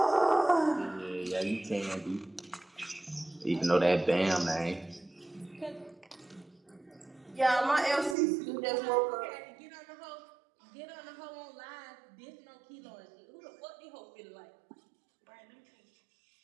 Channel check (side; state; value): left; drops out; at 8.2 s